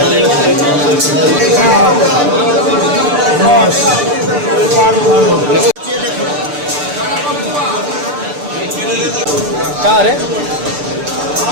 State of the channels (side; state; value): left; late; 6.8 ms